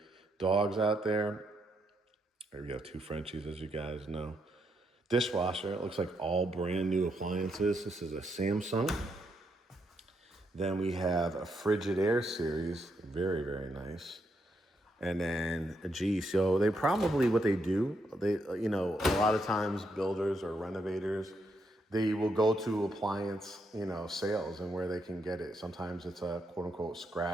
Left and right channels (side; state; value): both; normal; correlation 0.79